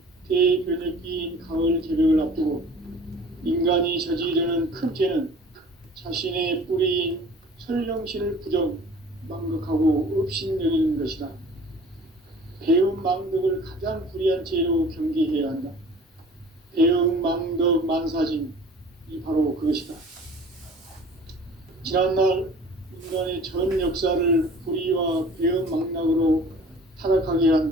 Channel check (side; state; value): both; normal; correlation 0.47